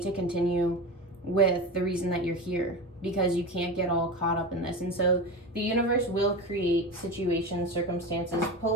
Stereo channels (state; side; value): normal; both; correlation 0.25